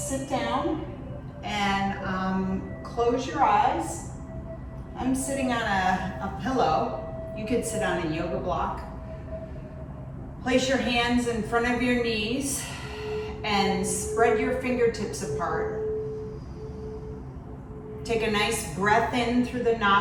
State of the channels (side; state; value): both; identical; correlation 1.00